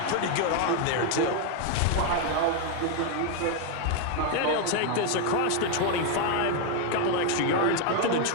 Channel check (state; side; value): different; both; correlation 0.01